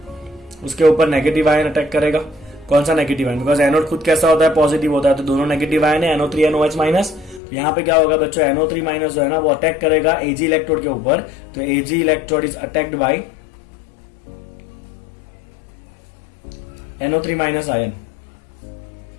उसके ऊपर नेगेटिव आयन अटैक करेगा। कौन सा नेगेटिव आयन? बिकॉज एनोड खुद कैसा होता है? पॉजिटिव होता है। तो दोनों नेगेटिव आयन है, NO3 NOH माइनस। तो यहाँ पे क्या होगा बच्चों? NO3 माइनस जो है ना वो अटैक करेगा Ag इलेक्ट्रोड के ऊपर। तो Ag electrode is attacked by NO3 minus ion.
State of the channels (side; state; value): right; drops out; at 7.4 s